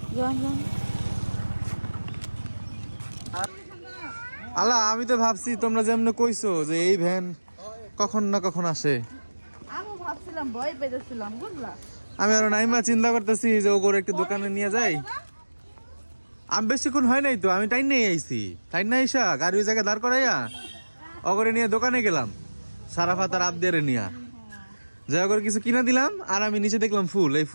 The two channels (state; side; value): inverted; both; correlation -1.00